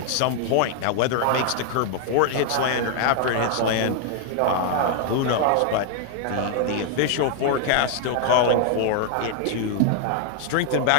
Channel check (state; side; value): different; both; correlation 0.00